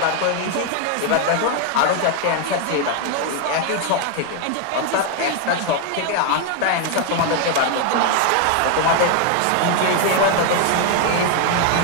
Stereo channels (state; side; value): different; both; correlation 0.01